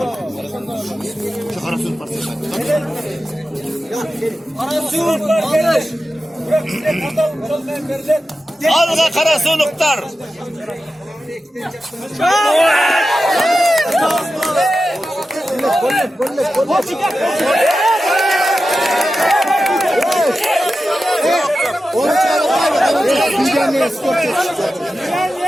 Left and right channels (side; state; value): both; normal; correlation 0.92